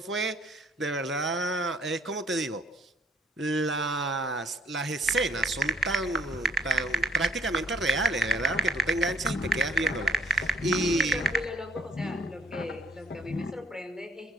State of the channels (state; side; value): normal; both; correlation 0.65